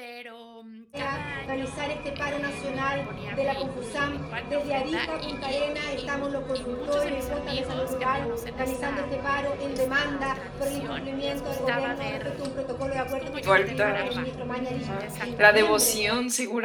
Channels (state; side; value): identical; both; correlation 1.00